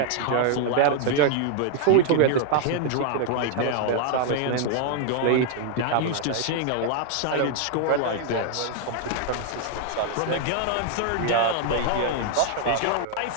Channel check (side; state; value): both; different; correlation 0.00